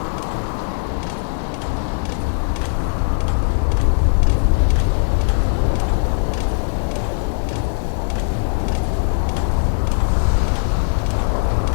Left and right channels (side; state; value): right; silent; digital silence